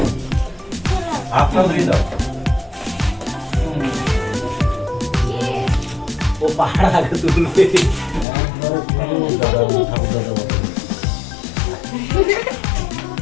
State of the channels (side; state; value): right; drops out; at 8.2 s